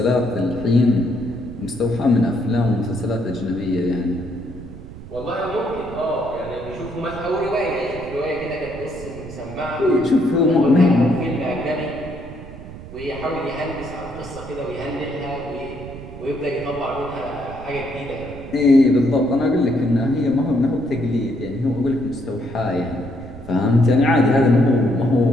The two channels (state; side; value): noise; right; rumble, 14 dB below the sound